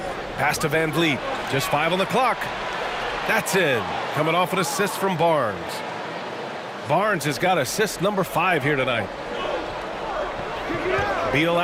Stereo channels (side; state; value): both; identical; correlation 1.00